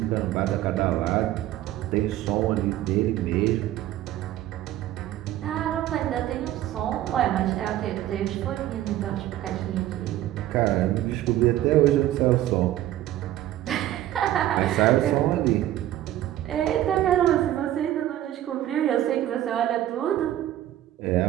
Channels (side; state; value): left; quieter; 13.5 dB